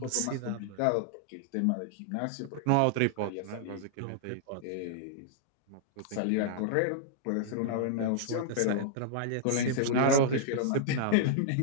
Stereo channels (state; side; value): different; both; correlation -0.01